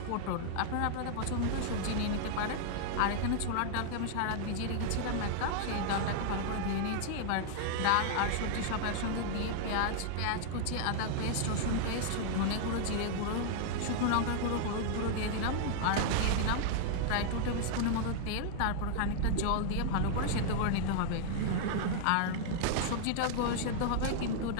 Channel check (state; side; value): different; both; correlation -0.01